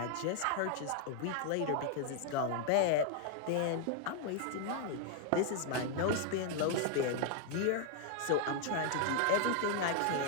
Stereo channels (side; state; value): both; different; correlation 0.00